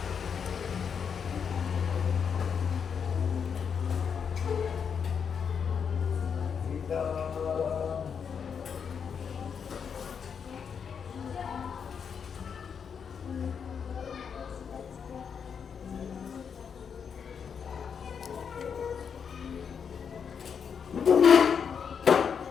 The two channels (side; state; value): right; quieter; 6.8 dB